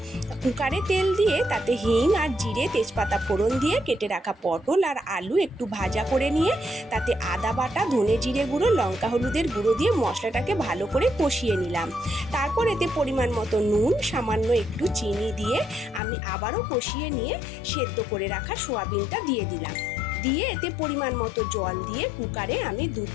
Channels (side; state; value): right; drops out; at 16.0 s